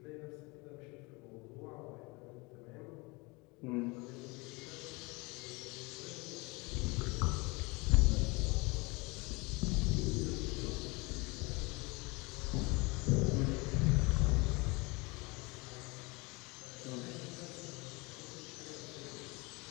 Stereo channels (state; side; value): quieter; right; 26.3 dB